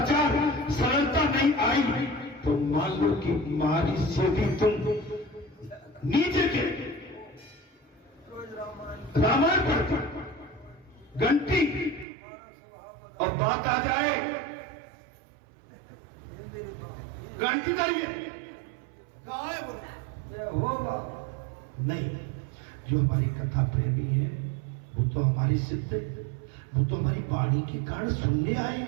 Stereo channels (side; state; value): left; drops out; at 12.1 s